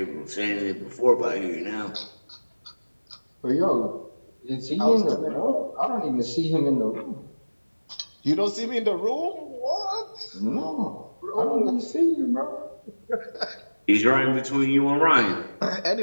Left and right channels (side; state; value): both; inverted; correlation -1.00